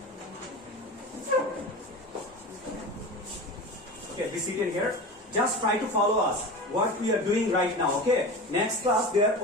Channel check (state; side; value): normal; both; correlation 0.30